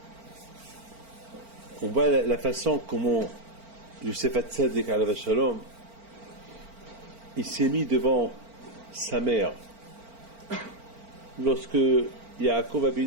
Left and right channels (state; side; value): late; left; 4.4 ms